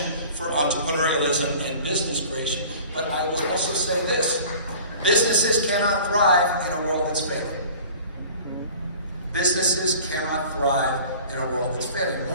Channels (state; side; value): inverted; both; correlation -0.44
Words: for entrepreneurialism and business creation. But I will also say this: businesses cannot thrive in a world that's failing. Businesses cannot thrive in a world that's failing.